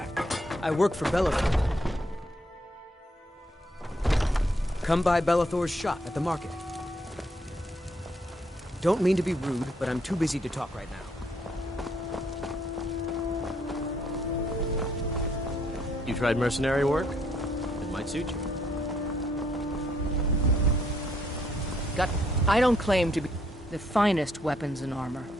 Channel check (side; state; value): both; normal; correlation 0.71